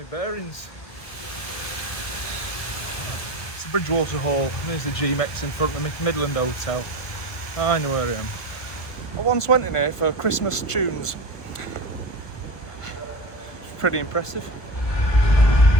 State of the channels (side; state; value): right; late; 1.7 ms